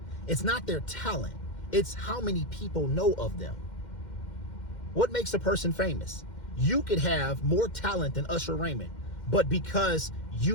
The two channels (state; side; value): late; right; 2.1 ms